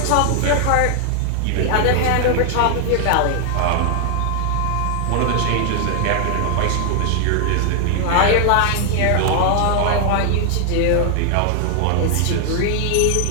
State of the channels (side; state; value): both; different; correlation 0.00